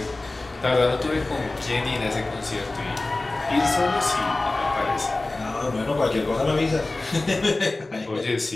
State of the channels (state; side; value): quieter; right; 3.0 dB